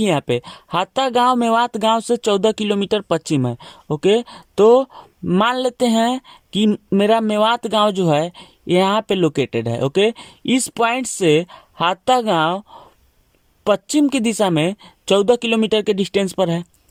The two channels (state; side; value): identical; both; correlation 1.00